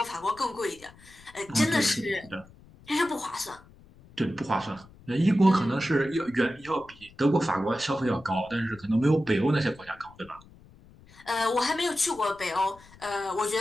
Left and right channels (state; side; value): noise; left; rumble, 24 dB below the sound